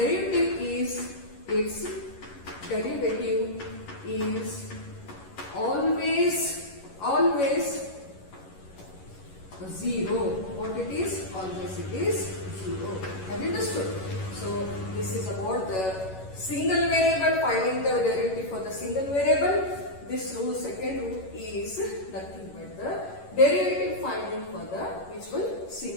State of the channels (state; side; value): late; right; 11 ms